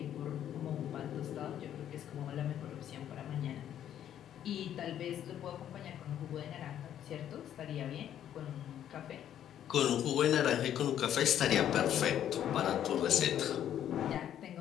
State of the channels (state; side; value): quieter; right; 10.5 dB